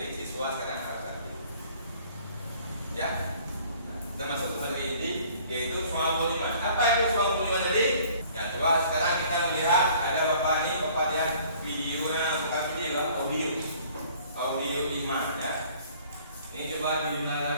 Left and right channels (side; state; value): both; inverted; correlation -0.55